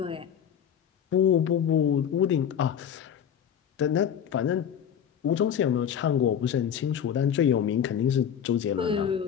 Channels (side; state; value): right; quieter; 8.7 dB